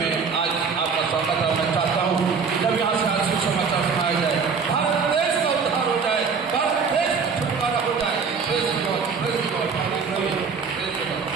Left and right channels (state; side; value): quieter; left; 5.6 dB